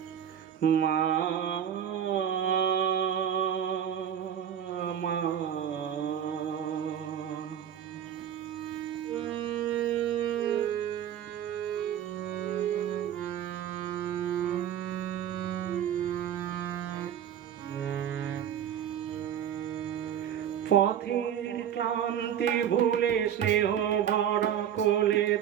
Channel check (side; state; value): left; quieter; 9.6 dB